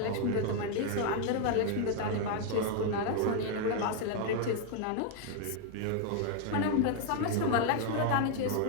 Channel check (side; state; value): both; different; correlation 0.00